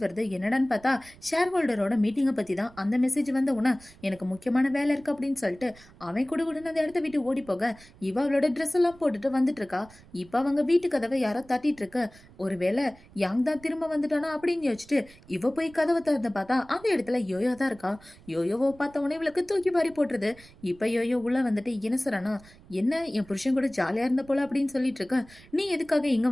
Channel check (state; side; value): noise; right; rumble, 24 dB below the sound